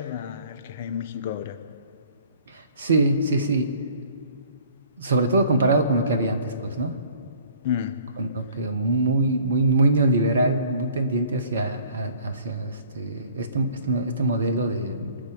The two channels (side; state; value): both; inverted; correlation -0.53